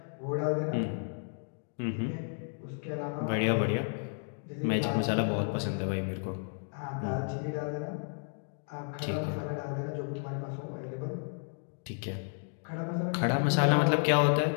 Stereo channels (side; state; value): right; silent; 56 dB below the other